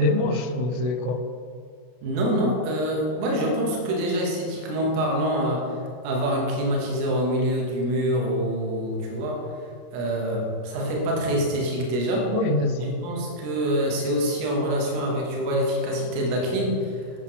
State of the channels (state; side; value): late; left; 33 ms